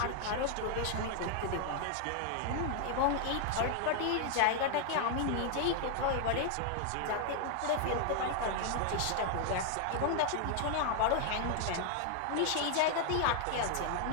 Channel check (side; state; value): both; different; correlation 0.00